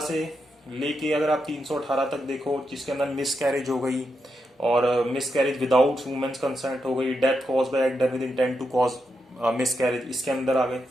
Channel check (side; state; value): both; normal; correlation 0.84